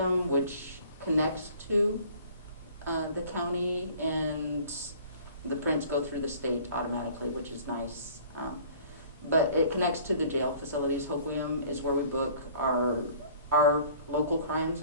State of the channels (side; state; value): both; inverted; correlation -0.51